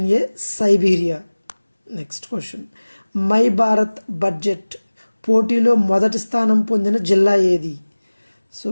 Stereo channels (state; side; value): inverted; both; correlation -1.00